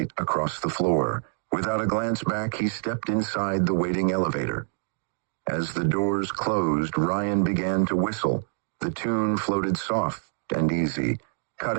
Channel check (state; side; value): silent; left; digital silence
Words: across the floor. Without a glance back, he stepped inside the waiting elevator. As the doors closed, Ryan began to whistle. The tune floated soft and easy,